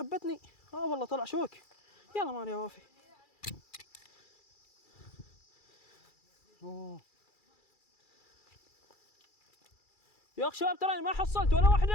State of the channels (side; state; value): right; late; 2.3 ms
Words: والله طلع شوك. يلا مالي يا وافي. اوه يا اخ شباب تراني ما حصلت ولا